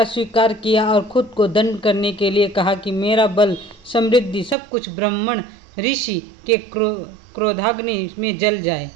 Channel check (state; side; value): drops out; left; at 4.5 s